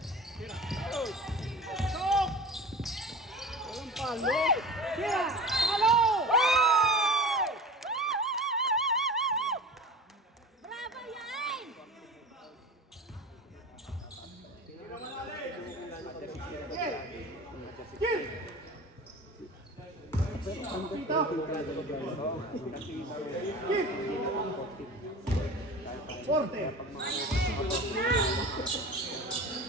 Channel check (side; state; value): both; normal; correlation 0.35